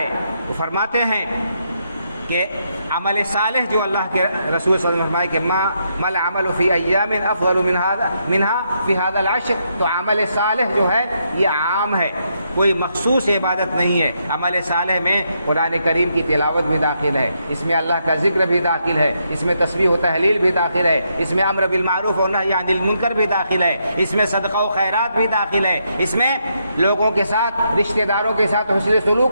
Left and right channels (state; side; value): inverted; both; correlation -0.78